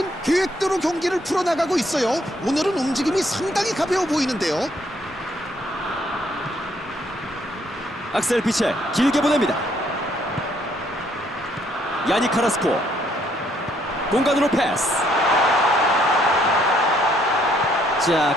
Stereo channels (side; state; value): both; normal; correlation 0.68